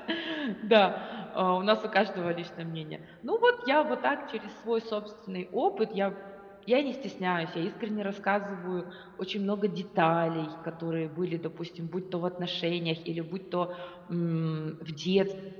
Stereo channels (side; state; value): both; identical; correlation 1.00